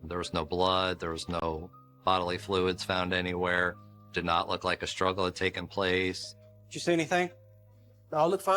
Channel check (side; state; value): both; identical; correlation 1.00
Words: There was no blood. There was no bodily fluids found anywhere. Did not look like a struggle had taken place. Did you see anything? All looked